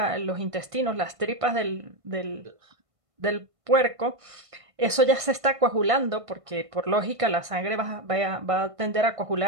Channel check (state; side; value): late; left; 1.5 ms